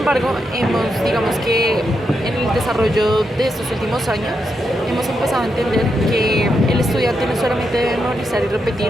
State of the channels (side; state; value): both; normal; correlation 0.83